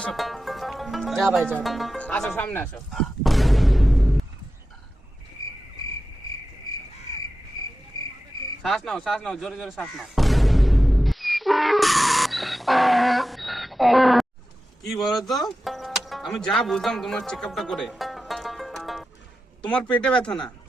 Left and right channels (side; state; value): both; normal; correlation 0.92